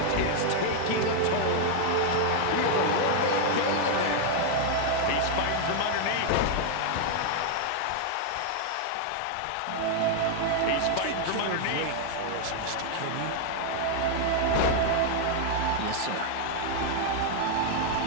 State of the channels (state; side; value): different; both; correlation 0.00